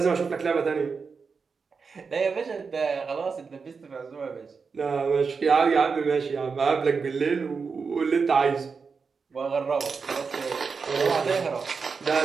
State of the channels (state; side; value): quieter; left; 5.2 dB